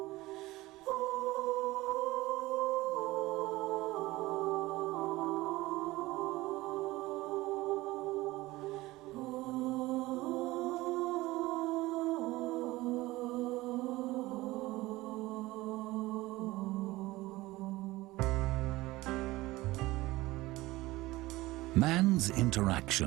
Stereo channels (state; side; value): quieter; left; 19.1 dB